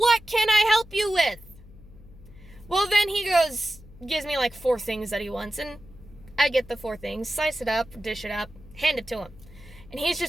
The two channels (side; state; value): left; noise; hum, 21 dB below the sound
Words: can I help you with? Well, then he gives me like 4 things that he wants, and I get the 4 things, slice it up, dish it up, hand it to him. And he's